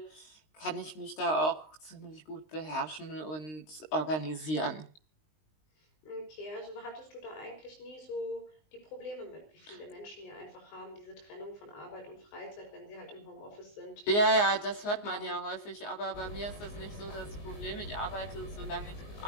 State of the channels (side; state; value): right; late; 19 ms